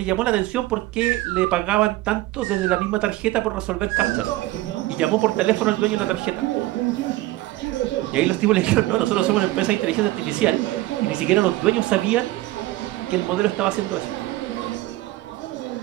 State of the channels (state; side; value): quieter; left; 17.6 dB